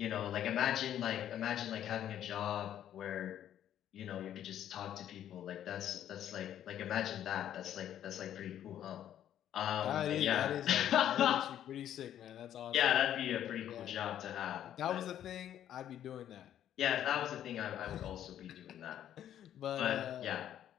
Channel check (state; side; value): quieter; right; 10.9 dB